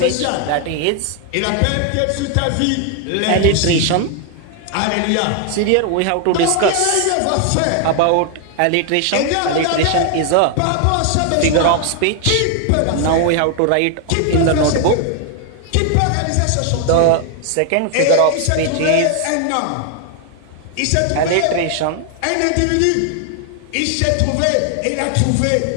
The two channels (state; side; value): different; both; correlation 0.00